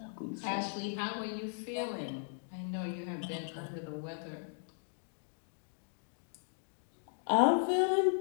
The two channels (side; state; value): right; silent; digital silence